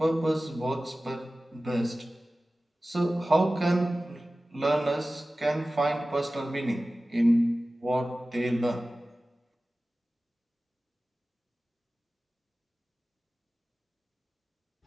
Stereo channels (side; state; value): both; normal; correlation 0.96